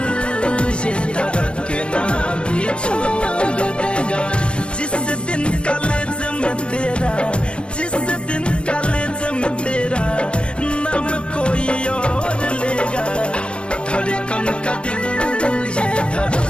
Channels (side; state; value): right; late; 0.056 ms